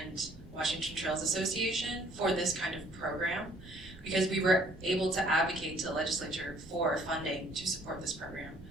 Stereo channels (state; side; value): noise; right; rumble, 19 dB below the sound